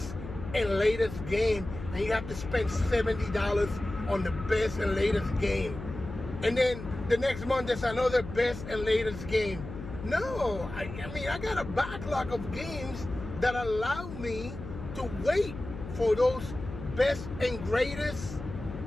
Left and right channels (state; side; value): noise; left; hum, 10 dB below the sound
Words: and latest game, and you have to spend $70 on the best and latest game, and then the next month there's another best and latest game. No, I mean, I got a backlog of games that allow me to wait for those best and greatest